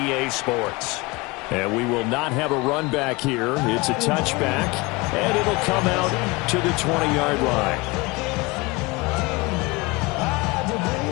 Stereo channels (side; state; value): right; quieter; 24.4 dB